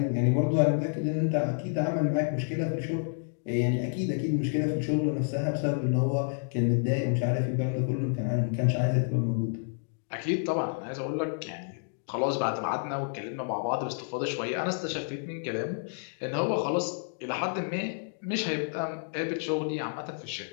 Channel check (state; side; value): silent; right; digital silence